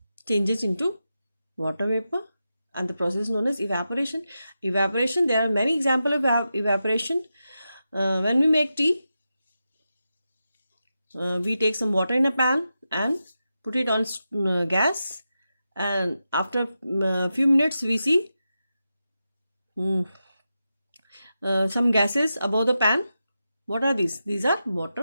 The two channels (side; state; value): both; inverted; correlation -0.90